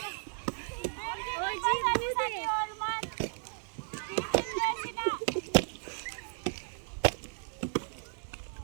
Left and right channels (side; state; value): left; silent; 55 dB below the other